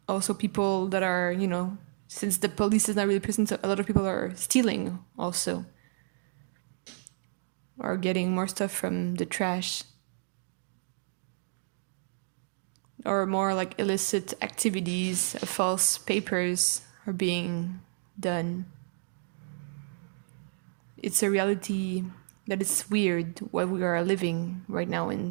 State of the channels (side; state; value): left; silent; digital silence